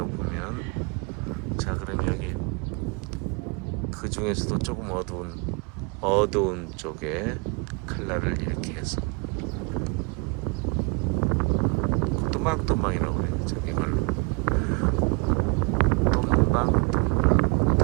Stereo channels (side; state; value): left; quieter; 30.8 dB